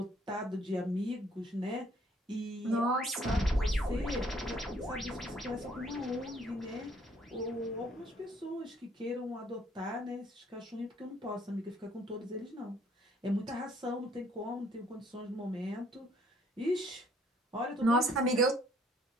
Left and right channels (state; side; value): normal; both; correlation 0.63